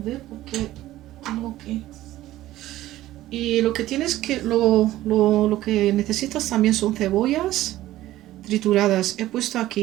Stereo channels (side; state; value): left; quieter; 15.1 dB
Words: porque tengo que... Y lo que tienes que, lo que necesitas también son cebollas trituradas. He puesto